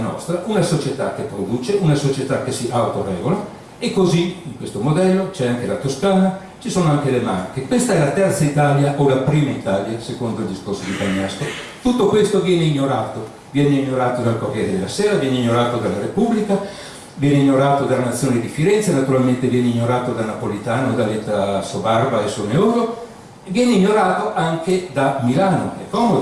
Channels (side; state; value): both; identical; correlation 1.00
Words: una società che produce, una società che si autoregola, e così in questo modello c'è anche la Toscana, ci sono anche le Marche. Questa è la terza Italia o la prima Italia, secondo il discorso di Bagnasco. Tutto questo viene ignorato dal Corriere della Sera, viene ignorato dalla Repubblica, viene ignorato dalla Nazione di Firenze, naturalmente viene ignorato da Napolitano, da Letta Sobarba e Soneoro, viene ignorato anche da Milano, è